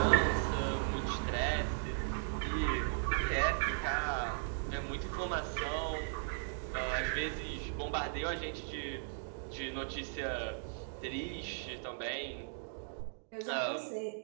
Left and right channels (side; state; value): left; silent; digital silence